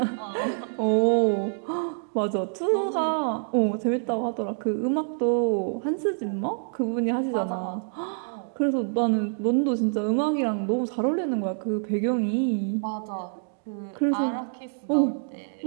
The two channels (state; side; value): silent; left; digital silence